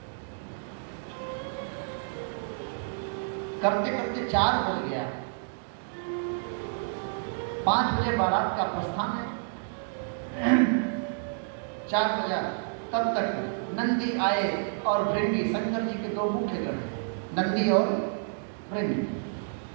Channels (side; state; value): left; silent; digital silence